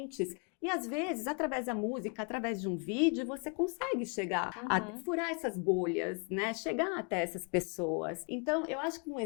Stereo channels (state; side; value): quieter; right; 37.2 dB